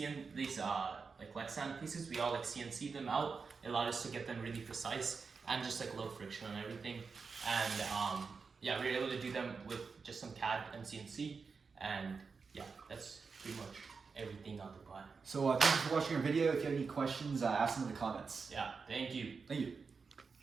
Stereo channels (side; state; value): left; quieter; 5.0 dB